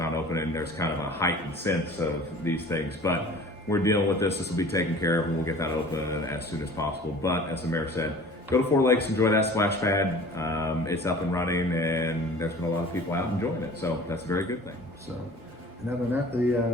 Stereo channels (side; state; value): both; normal; correlation 0.45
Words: not open and there's kind of a heightened sense of these things, but we're dealing with this. This will be taken care of and we'll get that open as soon as possible. But as the mayor said, go to 4 Lakes, enjoy that splash pad. It's up and running and there's been a lot of people out enjoying it. So that's a very good thing. So, and other than that,